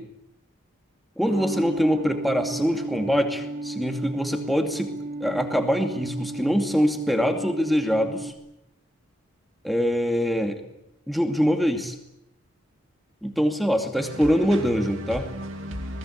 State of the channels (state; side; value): normal; both; correlation 0.87